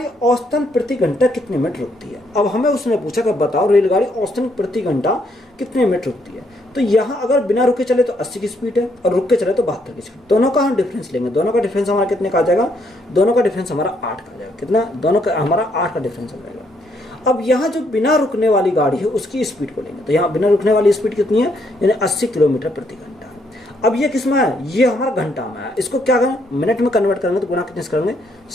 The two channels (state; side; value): normal; both; correlation 0.72